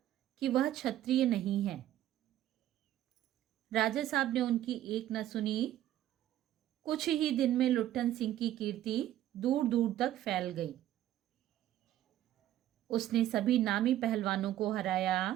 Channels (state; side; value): quieter; left; 12.8 dB